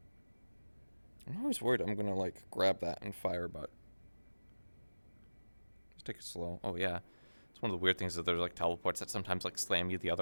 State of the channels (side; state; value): both; inverted; correlation -1.00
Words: I'm always worried I'm gonna like grab that and fire, but just take it slow. Oh yeah, it's one of the weird things that there's like teleports that sometimes like slam you the